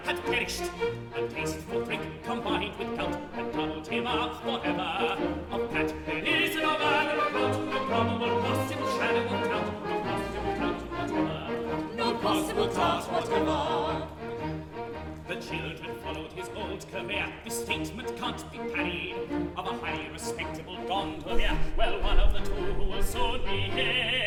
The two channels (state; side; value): identical; both; correlation 1.00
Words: had perished, a taste for drink combined with gout had doubled him up forever. Of that there is no manner of doubt, no probable possible shadow of doubt, no possible doubt whatever, no possible doubt whatever. The children followed his old career, this statement can't be parried, of a highly respectable gondolier, well, one of the two who will soon be